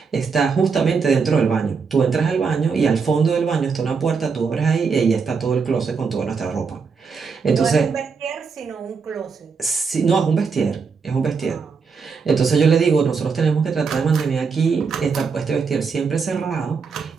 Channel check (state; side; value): quieter; left; 5.4 dB